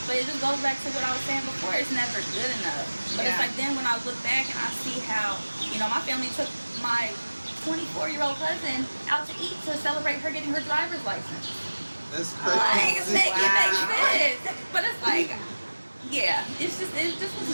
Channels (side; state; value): both; inverted; correlation -1.00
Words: but it just goes back to what I was saying before. It's never good enough. But it's Yeah. like then when I look back and I see how, you know, my family took my 24-year-old cousin out to eat to celebrate her getting her driver's license. That's Like, crazy. it makes sense. But it's like, yeah, it just was